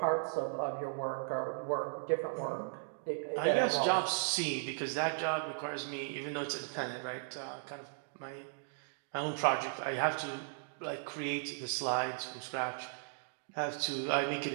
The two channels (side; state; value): left; silent; digital silence